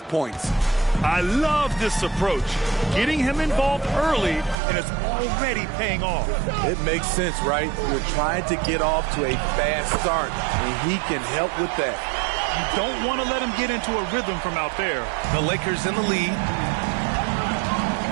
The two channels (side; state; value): left; drops out; at 4.5 s